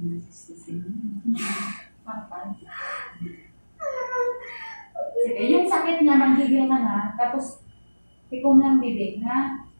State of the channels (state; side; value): inverted; both; correlation -1.00